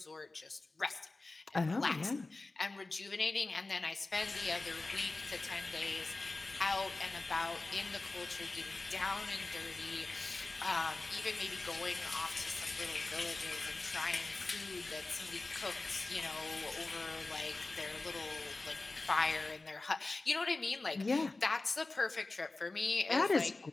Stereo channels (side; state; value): right; quieter; 3.3 dB